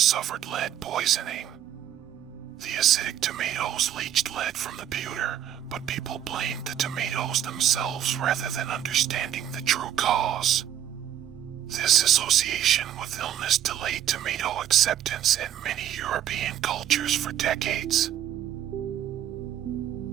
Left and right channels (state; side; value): quieter; left; 10.7 dB